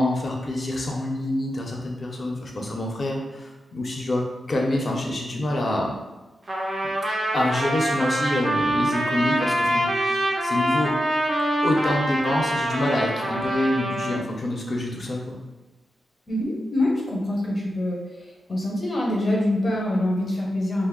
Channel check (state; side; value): normal; both; correlation 0.89